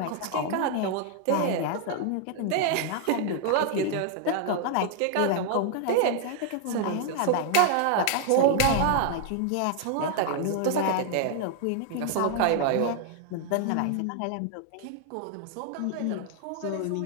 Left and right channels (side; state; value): both; different; correlation 0.00